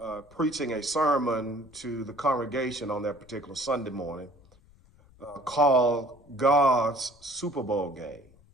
preaching a sermon to the congregation on that particular Sunday morning called God's Super Bowl Game.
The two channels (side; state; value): left; noise; rumble, 27 dB below the sound